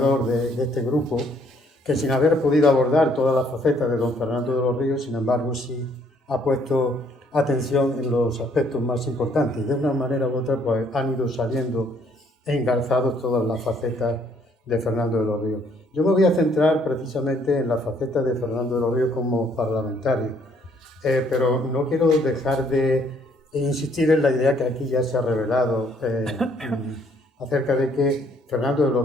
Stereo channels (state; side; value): normal; both; correlation 0.65